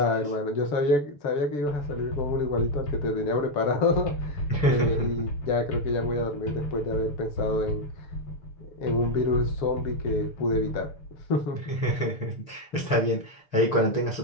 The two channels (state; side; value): late; right; 6.8 ms